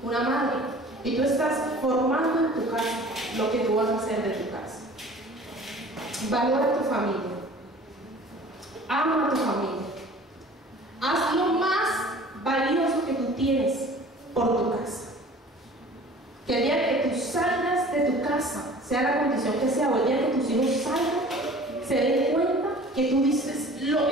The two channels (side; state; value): both; normal; correlation 0.46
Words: una madre. Y tú estás formando en tu casa lo que tú vas a hacer de tu casa. Valora a tu familia. Ama a tu familia. Haz lo más valioso que tú tienes por tu casa. Que el día que tú salgas de tu casa, sea la condición que sea, o el día que tus hijos salgan, se den cuenta que tú dices lo